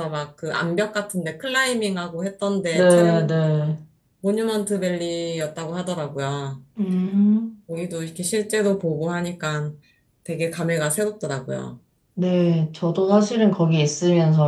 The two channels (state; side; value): identical; both; correlation 1.00